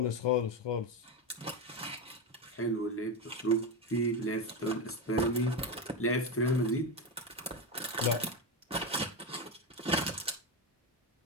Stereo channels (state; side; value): normal; both; correlation 0.14